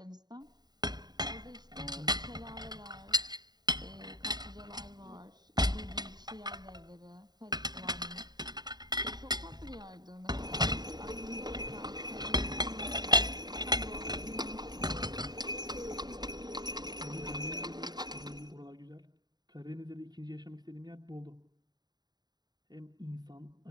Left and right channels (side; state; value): left; late; 0.20 ms